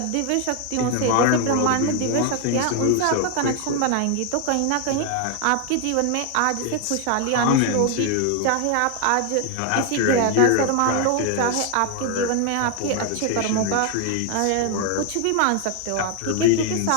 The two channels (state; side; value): different; both; correlation 0.01